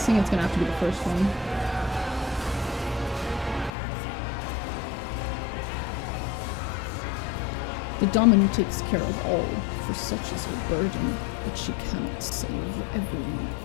it's gonna have to be the first one. The dominant takes care of all, for such is her burden, but she cannot save everyone.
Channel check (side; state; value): right; drops out; at 3.7 s